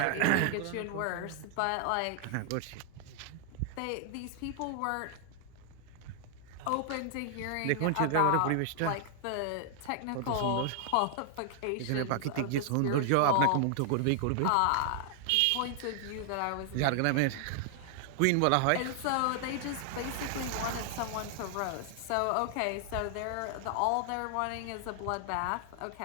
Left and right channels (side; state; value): both; different; correlation 0.00